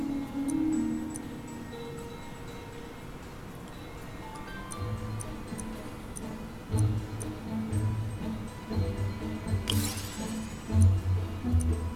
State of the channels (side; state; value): both; identical; correlation 1.00